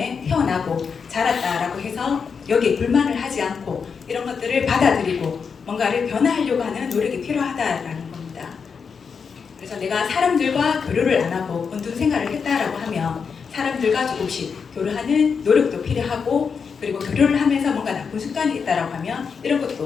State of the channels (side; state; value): right; quieter; 5.9 dB